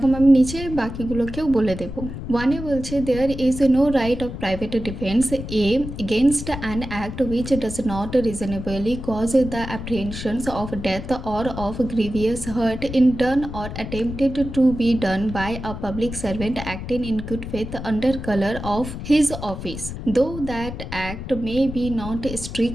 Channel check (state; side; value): noise; left; rumble, 8 dB below the sound